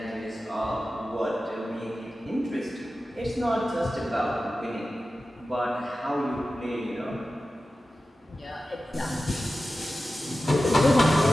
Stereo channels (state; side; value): normal; both; correlation 0.94